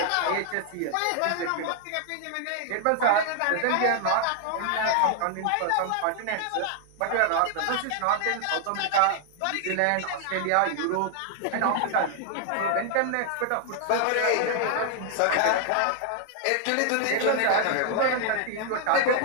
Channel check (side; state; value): both; different; correlation 0.00